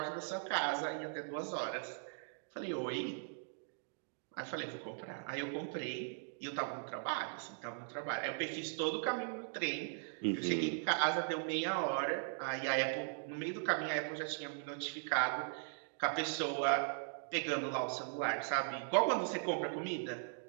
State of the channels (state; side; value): silent; left; digital silence